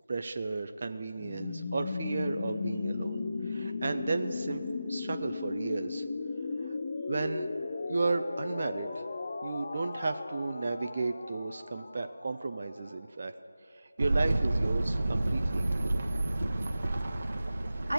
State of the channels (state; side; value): inverted; both; correlation -0.93